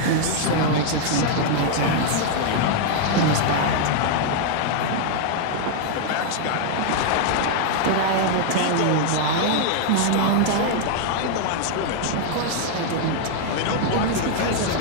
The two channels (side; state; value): both; different; correlation 0.00